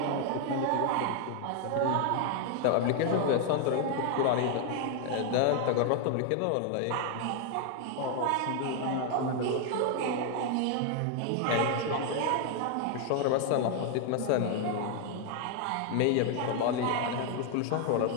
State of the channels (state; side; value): different; both; correlation 0.00